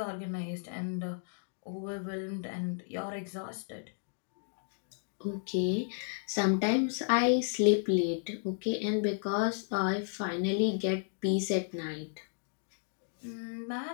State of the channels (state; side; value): silent; right; digital silence